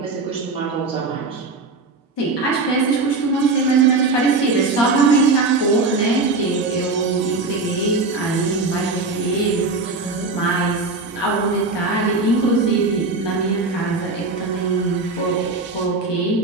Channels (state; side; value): quieter; left; 3.7 dB